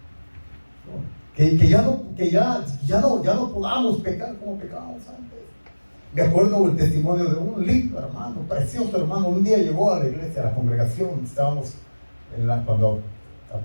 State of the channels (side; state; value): both; inverted; correlation -1.00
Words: Que ya no podamos pecar como pecábamos antes. Me acuerdo el testimonio de un lindo hermano, precioso hermano. Un día llegó a la iglesia, a la congregación. Estábamos cuando